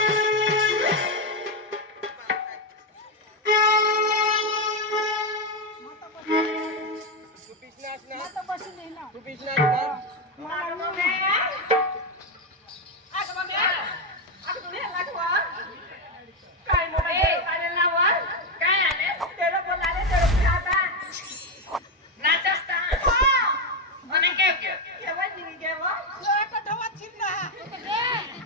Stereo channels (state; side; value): normal; both; correlation 0.08